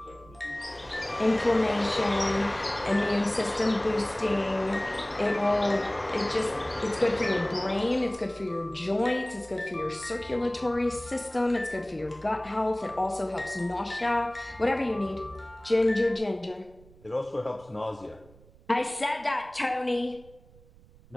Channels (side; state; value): right; noise; rumble, 25 dB below the sound